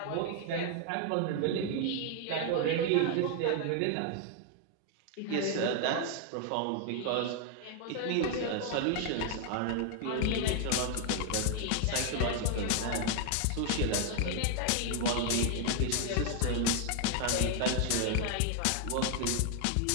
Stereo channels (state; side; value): different; both; correlation 0.00